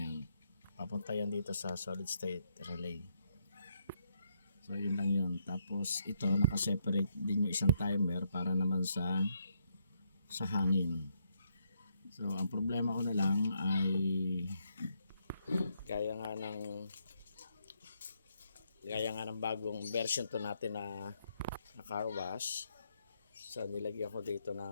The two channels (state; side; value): inverted; both; correlation -0.75